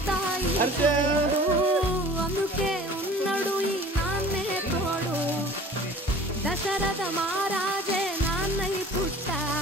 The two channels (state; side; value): normal; both; correlation 0.45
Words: అందుకే ఉన్నాడు ఈ నాన్నే తోడు దశరథ మహారాజే నాన్నై